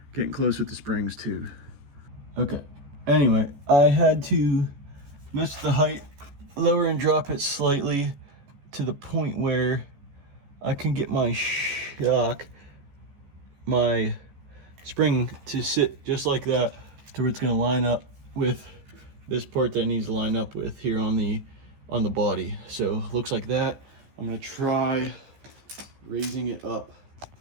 Getting close with the springs too. Okay, anyway, I had to mess with the height, lower and drop it slightly to the point where I can get my shock, my spring to sit just like that to where it's gonna line up with this part that it needs to line up with here on the body. So looks like that. I'm gonna try raising it up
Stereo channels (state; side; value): late; left; 14 ms